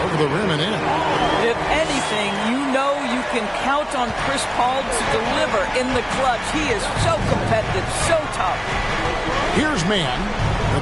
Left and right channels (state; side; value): identical; both; correlation 1.00